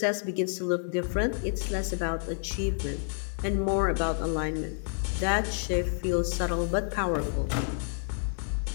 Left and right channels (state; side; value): silent; right; 58 dB below the other